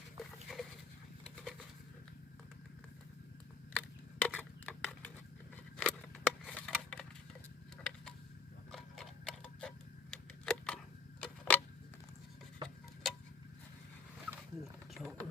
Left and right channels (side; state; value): right; quieter; 4.8 dB